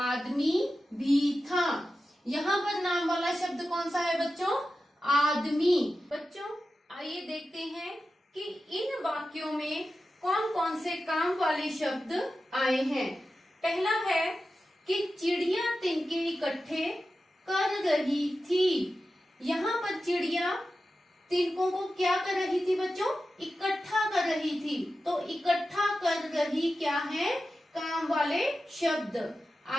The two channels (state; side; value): normal; both; correlation 0.92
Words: भी था। यहाँ पर नाम वाला शब्द कौन सा है बच्चों? आदमी। बच्चों आइए देखते हैं कि इन वाक्यों में कौन कौन से काम वाले शब्द आए हैं। पहला है कि चिड़िया तिनके इकट्ठे कर रही थी। यहाँ पर चिड़िया तिनकों को क्या कर रही थी बच्चों? इकट्ठा कर रही थी। तो इकट्ठा कर रही क्या है? काम वाले शब्द।